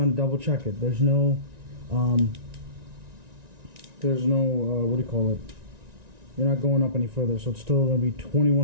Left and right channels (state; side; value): late; left; 1.9 ms